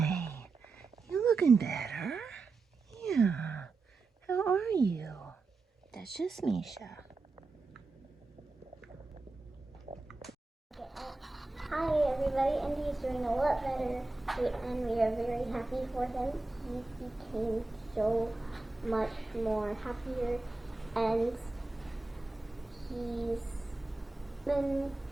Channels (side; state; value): left; quieter; 3.5 dB